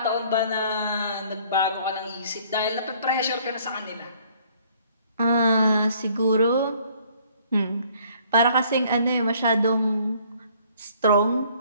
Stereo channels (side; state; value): both; inverted; correlation -0.60